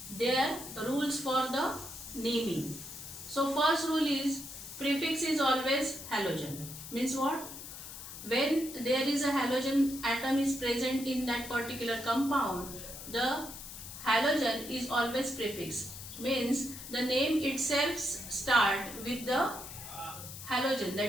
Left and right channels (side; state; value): left; noise; hiss, 11 dB below the sound